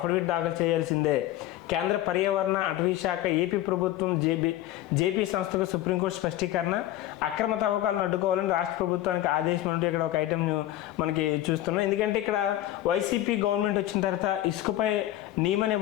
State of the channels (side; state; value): right; quieter; 14.1 dB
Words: దాఖలు చేయాల్సిందే. కేంద్ర పర్యావరణ అటవీ శాఖ ఏపీ ప్రభుత్వం జేపీ సంస్థకు సుప్రీంకోర్టు స్పష్టీకరణ. అక్రమ తవ్వకాలను అడ్డుకోవాలని రాష్ట్ర ప్రభుత్వానికి ఆదేశం అంటూ ఇక్కడ ఒక ఐటెం మనకి చూస్తున్నాం. ఎందుకంటే ఇక్కడ వైసీపీ గవర్నమెంట్ వచ్చిన తర్వాత ఇసుకపై నియమ